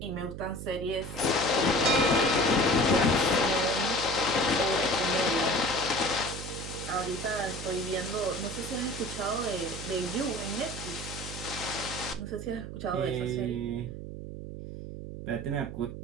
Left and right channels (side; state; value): right; noise; hum, 9 dB below the sound